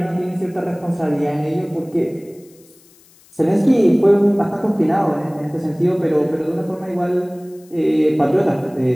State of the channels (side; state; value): left; noise; hiss, 28 dB below the sound